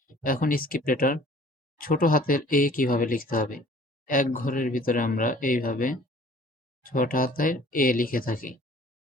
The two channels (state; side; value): normal; both; correlation 0.50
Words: এখন স্ক্রিপ্ট লেটার ছোট হাতের এ কিভাবে লিখতে হবে, এক ঘরের ভিতরে আমরা এইভাবে ছোট হাতের এ লিখে থাকি।